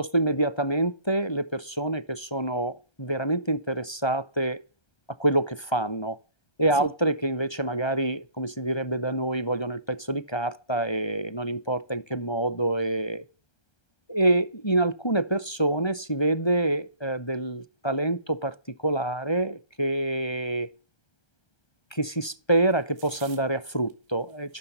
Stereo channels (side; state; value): right; late; 1.3 ms